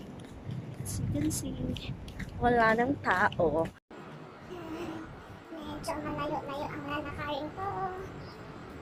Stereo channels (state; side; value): identical; both; correlation 1.00